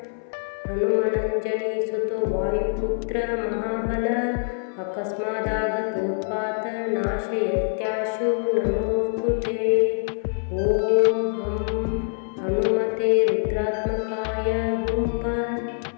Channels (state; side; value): silent; right; 62 dB below the other